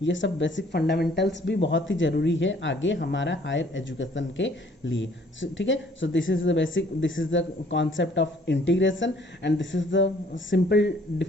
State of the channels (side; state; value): both; normal; correlation 0.59